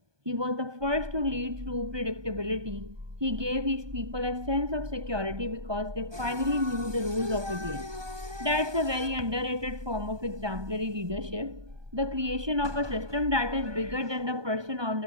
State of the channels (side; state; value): left; late; 1.2 ms